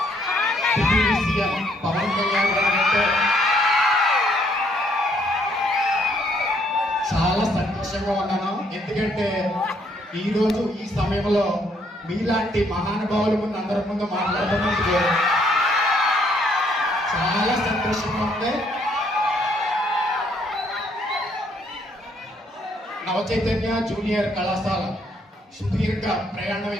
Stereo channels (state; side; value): normal; both; correlation 0.68